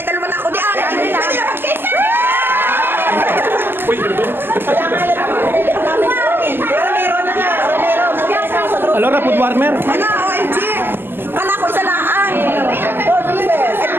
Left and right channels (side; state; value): left; late; 0.10 ms